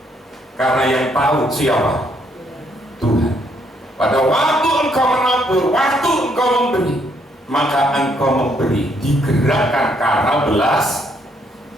karena yang tahu siapa? Tuhan. Pada waktu engkau menabur, waktu engkau memberi, maka engkau memberi, digerakkan karena belas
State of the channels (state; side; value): normal; both; correlation 0.71